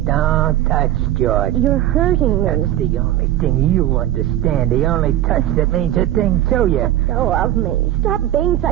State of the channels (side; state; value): left; quieter; 13.3 dB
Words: touch, George. You're hurting me. That's the only thing you understand. The only touch that means a thing to you. Let go of me. Stop being